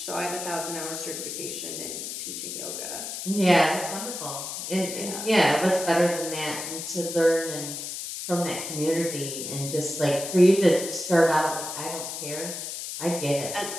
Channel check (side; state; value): left; noise; hiss, 6 dB below the sound